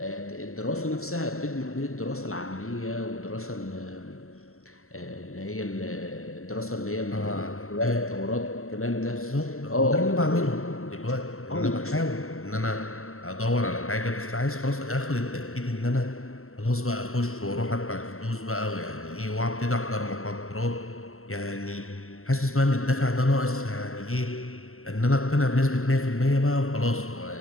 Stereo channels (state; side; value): late; right; 0.63 ms